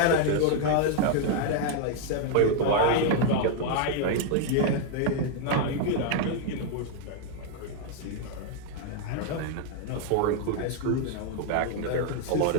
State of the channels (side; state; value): both; different; correlation 0.00